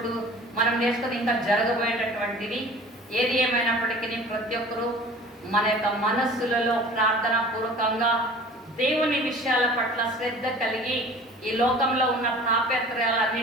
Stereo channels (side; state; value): both; normal; correlation 0.44